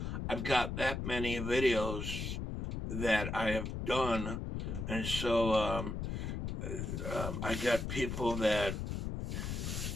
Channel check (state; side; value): noise; left; rumble, 3 dB below the sound